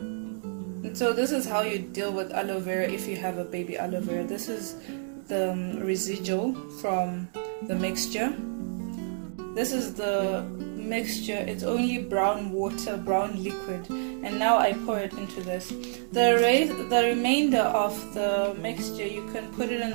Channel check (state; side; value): silent; left; digital silence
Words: And so this is how you deal with aloe vera if you have a baby aloe vera. This is the residual from the mixture. This is the mixture. It's only brown water, brown liquid, and now I pour it into this. The remainder of the mixture, you can put it